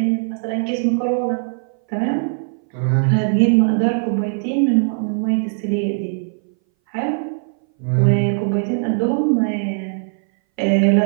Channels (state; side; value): silent; left; 61 dB below the other